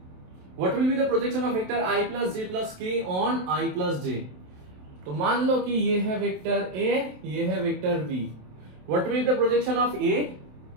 what will be the projection of vector i plus j plus k on i plus j। तो मान लो कि ये है वेक्टर a, ये है vector b, what will be the projection of a?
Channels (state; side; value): late; left; 27 ms